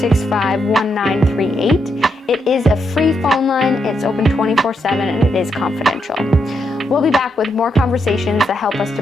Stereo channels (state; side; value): normal; both; correlation 0.81